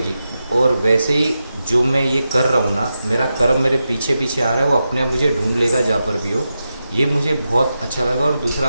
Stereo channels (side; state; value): both; inverted; correlation -0.90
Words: और वैसे ही जो मैं ये कर रहा हूँ ना, मेरा कर्म मेरे पीछे पीछे आ रहा है, वो अपने आप मुझे ढूंढ लेगा जहाँ पर भी हो। ये मुझे बहुत अच्छा लगा। और दूसरा